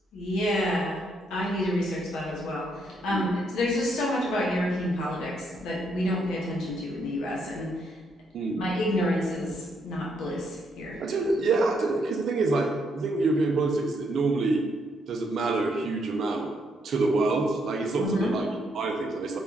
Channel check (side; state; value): both; normal; correlation 0.75